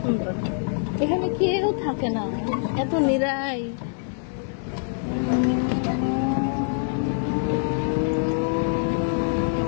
এখানে কেউ থাকে না, এত নিরাই।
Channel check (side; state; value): right; silent; digital silence